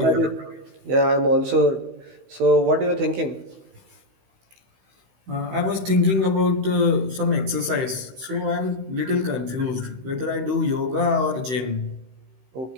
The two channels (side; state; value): left; late; 16 ms